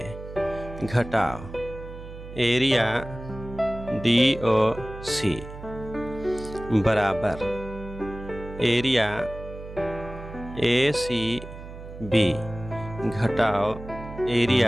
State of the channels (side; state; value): right; noise; hum, 13 dB below the sound